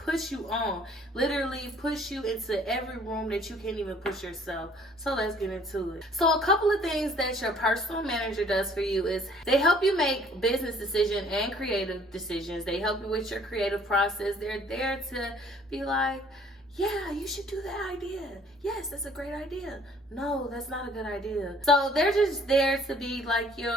you on, literally push you into every room that you can't even push yourself. So let's get into it. So a couple of things that your personal manager does for you is they help you make business decisions and creative decisions. They help you with your creative process. They're there to be like, yeah, you should do that idea. Yes, that's a great idea. No, that's not a good idea. So they're just there to be like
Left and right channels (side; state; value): both; normal; correlation 0.57